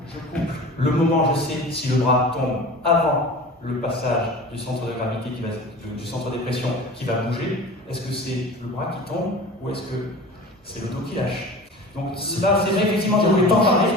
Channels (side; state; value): both; normal; correlation 0.37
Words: je coupe. Le moment, je sais si le bras tombe avant le passage du centre de gravité, du centre de pression qui va bouger. Est-ce que c'est le bras qui tombe ou est-ce que c'est le dos qui lâche? Donc là, c'est vrai, effectivement, je ne voulais pas en parler.